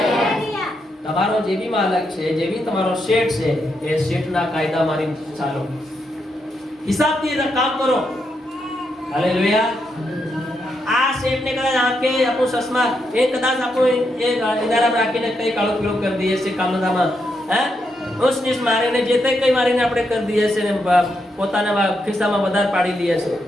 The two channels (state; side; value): normal; both; correlation 0.81